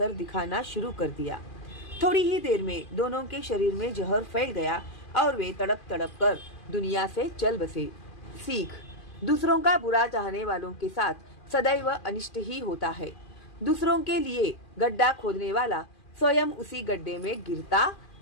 दिखाना शुरू कर दिया। थोड़ी ही देर में दोनों के शरीर में जहर फैल गया और वे तड़प तड़प कर दुनिया से चल बसे। सीख: दूसरों का बुरा चाहने वालों के साथ सदैव अनिष्ट ही होता है। दूसरों के लिए गड्ढा खोदने वाला स्वयं उसी गड्ढे में गिरता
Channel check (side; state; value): right; late; 2.4 ms